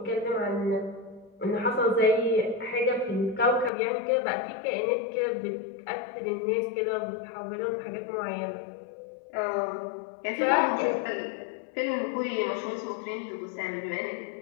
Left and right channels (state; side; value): drops out; right; at 3.7 s